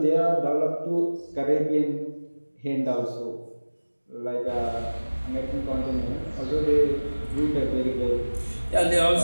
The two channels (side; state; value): both; inverted; correlation -1.00